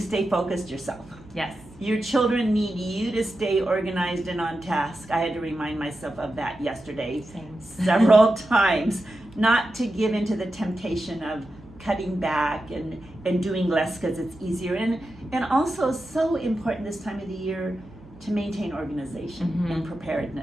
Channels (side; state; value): right; noise; hum, 23 dB below the sound